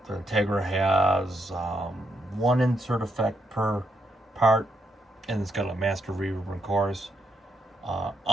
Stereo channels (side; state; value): both; normal; correlation 0.79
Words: The Integra has one insert effect per part, and it's got a master reverb and chorus.